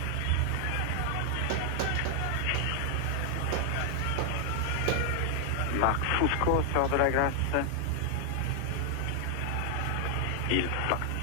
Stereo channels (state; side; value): different; both; correlation 0.00